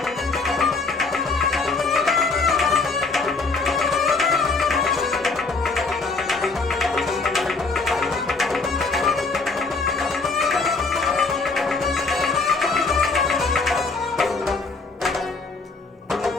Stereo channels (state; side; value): quieter; right; 4.0 dB